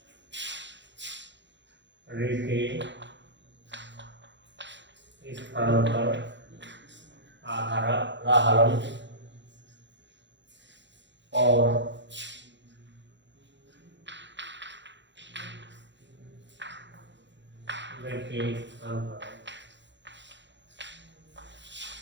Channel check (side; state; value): left; late; 0.52 ms